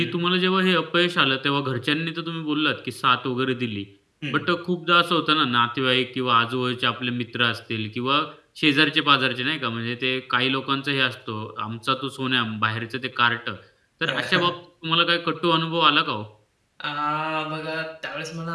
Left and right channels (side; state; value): both; identical; correlation 1.00